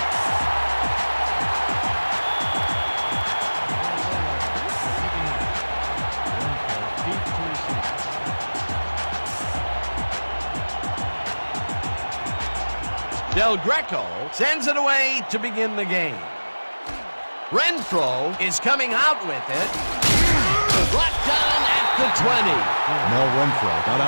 Del Greco sends it away to begin the game. Renfro is coming out with it. Brought down at the 20. Mel Renfro got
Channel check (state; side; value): inverted; both; correlation -1.00